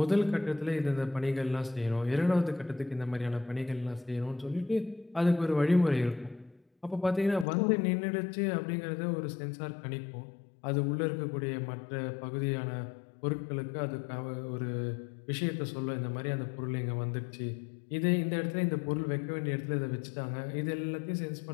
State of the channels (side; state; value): right; drops out; at 7.5 s